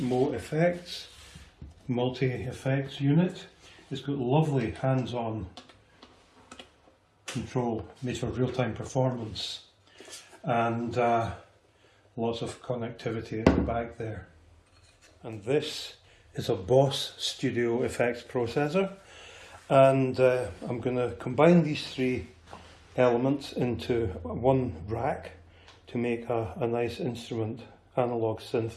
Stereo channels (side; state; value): both; identical; correlation 1.00